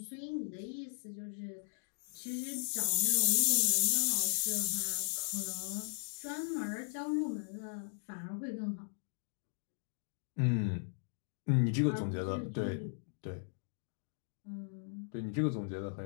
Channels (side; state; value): right; silent; digital silence